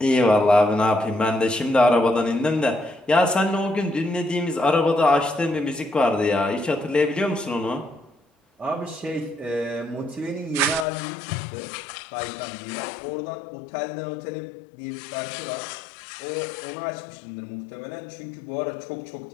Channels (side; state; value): right; drops out; at 10.9 s